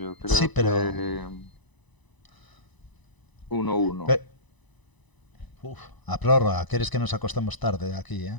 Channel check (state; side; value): late; right; 1.0 ms